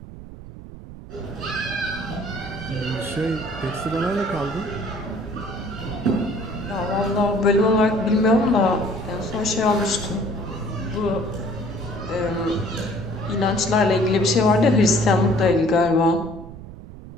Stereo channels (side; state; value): right; noise; rumble, 14 dB below the sound